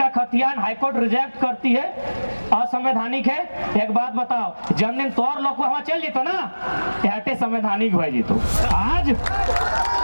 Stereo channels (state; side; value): inverted; both; correlation -1.00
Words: खतियान हाईकोर्ट रिजेक्ट करती है, असंवैधानिक है। एक बात बताओ, जन दिन तोर लोग वहां चल जीतो ना हटे संवैधानिक हो जीतो। आज